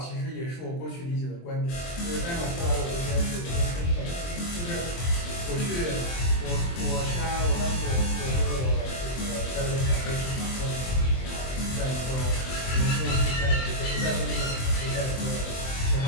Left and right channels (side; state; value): right; late; 23 ms